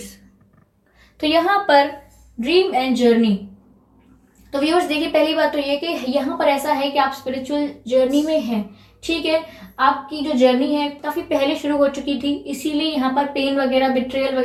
तो यहाँ पर ड्रीम एंड जर्नी, तो व्यूअर्स देखिए, पहली बात तो ये कि यहाँ पर ऐसा है कि आप स्पिरिचुअल जर्नी में हैं, ठीक है। आपकी जो जर्नी है काफ़ी पहले शुरू हो चुकी थी, इसीलिए यहाँ पर पेन वगैरह, बिट्रेयल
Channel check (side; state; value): both; identical; correlation 1.00